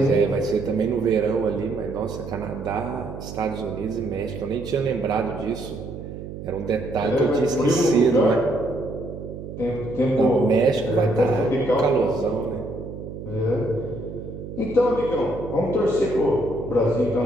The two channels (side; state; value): right; noise; hum, 10 dB below the sound